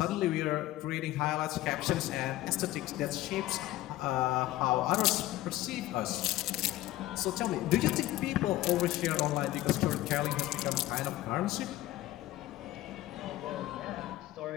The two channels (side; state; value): right; quieter; 15.9 dB